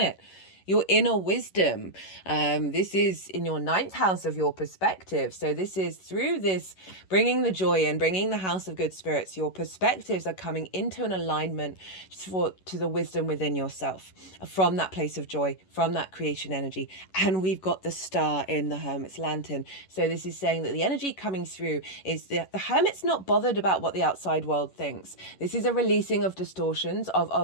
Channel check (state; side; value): late; right; 11 ms